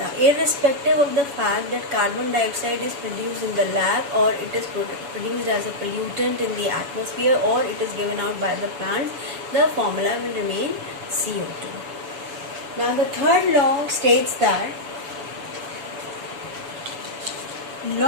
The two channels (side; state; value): left; late; 7.0 ms